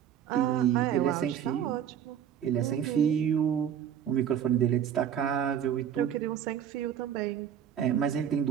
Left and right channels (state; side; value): quieter; left; 9.4 dB